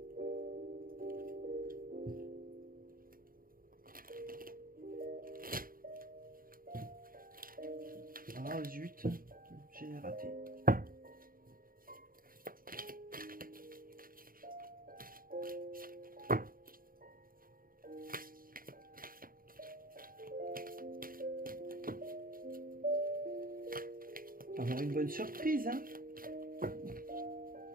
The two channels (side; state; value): left; late; 0.41 ms